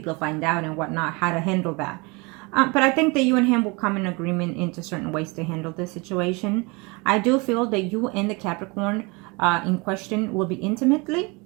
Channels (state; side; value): quieter; left; 27.8 dB